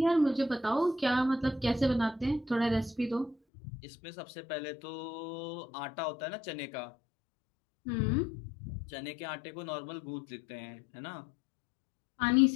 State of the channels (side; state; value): right; drops out; at 3.4 s